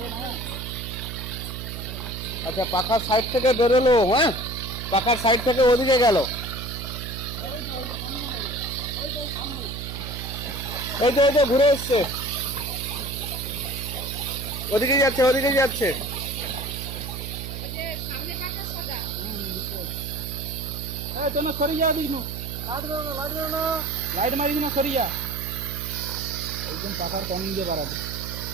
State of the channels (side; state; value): right; noise; hum, 7 dB below the sound